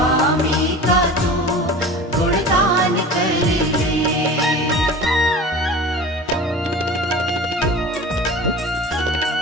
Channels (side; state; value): both; normal; correlation 0.37